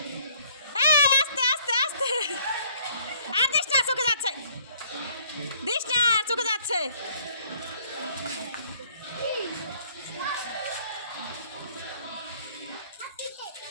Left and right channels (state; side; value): inverted; both; correlation -0.60